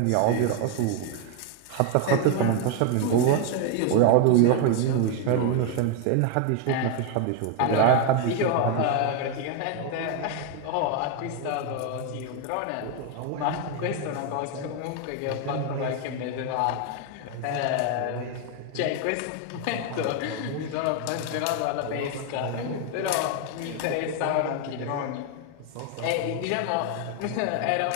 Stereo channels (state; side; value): different; both; correlation 0.01